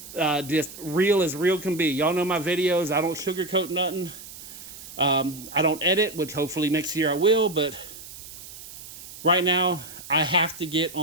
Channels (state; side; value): noise; right; hiss, 15 dB below the sound